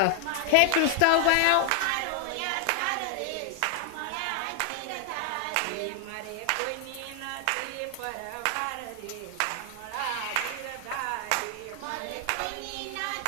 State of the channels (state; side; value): different; both; correlation 0.00